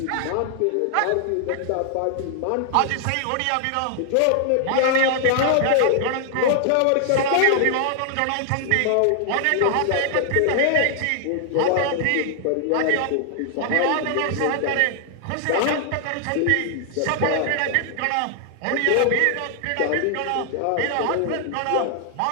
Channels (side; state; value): both; different; correlation 0.00